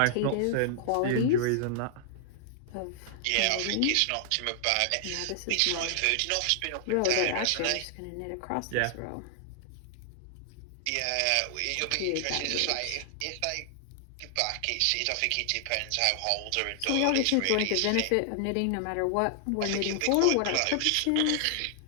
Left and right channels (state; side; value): different; both; correlation 0.00